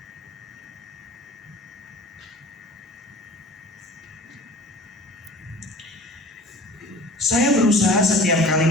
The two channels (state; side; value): normal; both; correlation 0.43